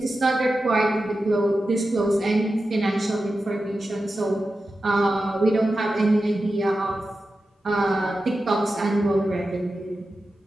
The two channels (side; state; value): both; normal; correlation 0.92